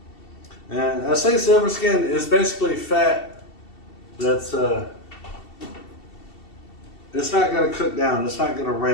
And I say silver skin is basically fat that's it's not going to cook down, it's not going to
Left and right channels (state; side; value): late; right; 2.7 ms